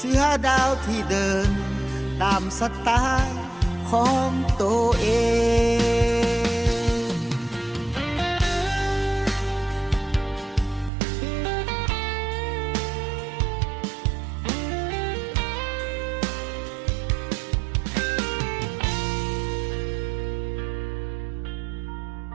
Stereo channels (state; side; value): drops out; left; at 10.9 s